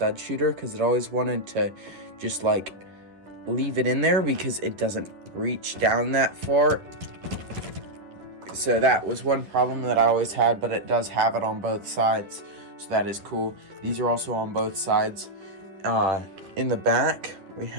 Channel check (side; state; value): left; late; 10 ms